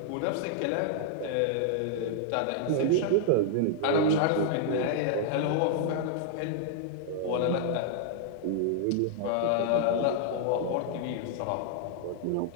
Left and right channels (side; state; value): both; different; correlation -0.01